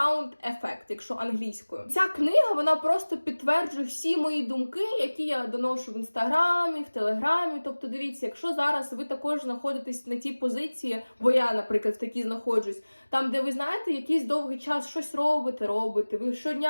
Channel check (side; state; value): both; inverted; correlation -1.00